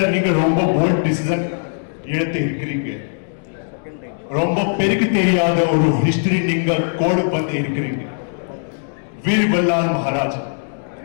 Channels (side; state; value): right; silent; digital silence